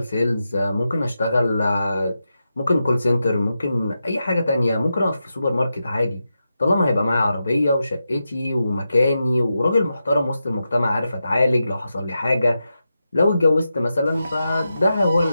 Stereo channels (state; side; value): inverted; both; correlation -0.89